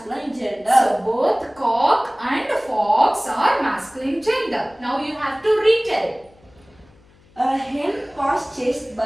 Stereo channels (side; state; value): left; noise; hum, 29 dB below the sound